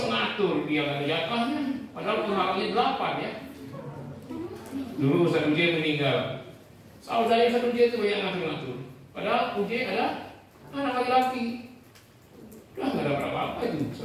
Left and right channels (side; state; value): both; identical; correlation 1.00